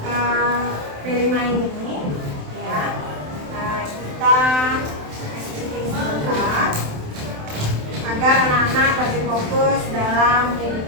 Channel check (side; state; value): left; late; 27 ms